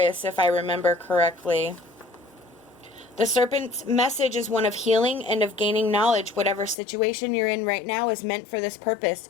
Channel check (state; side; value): drops out; right; at 6.8 s